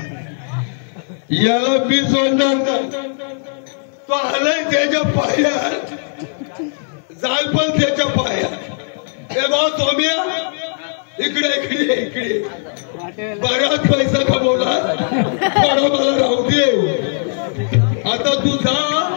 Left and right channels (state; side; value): silent; right; 67 dB below the other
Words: याला मी सोडणार. तो आलाय त्याच्या पायात जाल पण त्याच्या पायात. हे बा सोम्या इकडे बराच पैसा कमवला. थोडा मला राहू दे. आता तू जा